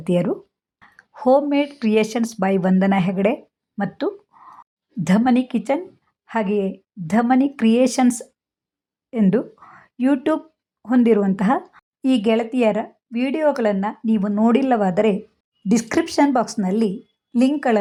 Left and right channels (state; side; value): identical; both; correlation 1.00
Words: ಹೋಮ್ ಮೇಡ್ ಕ್ರಿಯೇಷನ್ಸ್ ಬೈ ವಂದನಾ ಹೆಗಡೆ ಮತ್ತು ಧಮನಿ ಕಿಚನ್, ಹಾಗೆಯೇ ಧಮನಿ ಕ್ರಿಯೇಷನ್ಸ್ ಎಂದು ಯೂಟ್ಯೂಬ್ ಹೊಂದಿರುವಂತಹ ಈ ಗೆಳತಿಯರ ವಿಡಿಯೋಗಳನ್ನು ನೀವು ನೋಡಿಲ್ಲವಾದರೆ ಡಿಸ್ಕ್ರಿಪ್ಷನ್ ಬಾಕ್ಸ್ನಲ್ಲಿ